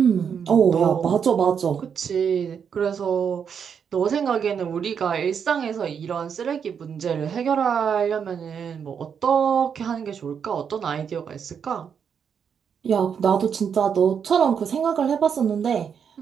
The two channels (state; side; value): quieter; left; 7.2 dB